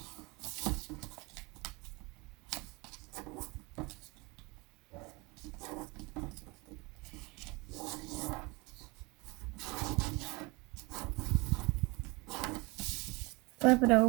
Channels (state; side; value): quieter; left; 26.4 dB